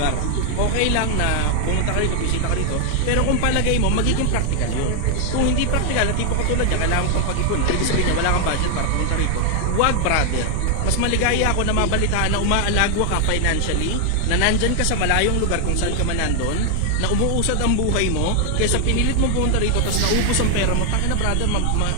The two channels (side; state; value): both; different; correlation 0.00